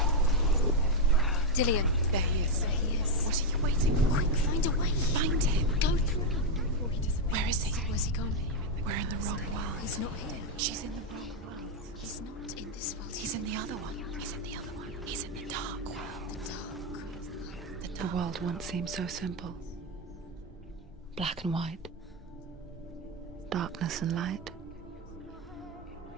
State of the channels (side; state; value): both; normal; correlation 0.03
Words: Dillion. There he is. There he is. What are you waiting for? Quick, find a way. Find him. Go through him. Where is he? Where's he gone? We're in the wrong world. He's not here. She's in the wrong world. He's not in this world. He's in the other one. He's in the other one. He's in the dark world. The world once seemed so simple. Black and white. Darkness and light.